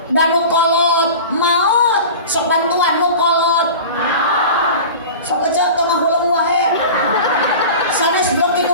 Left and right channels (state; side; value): inverted; both; correlation -0.35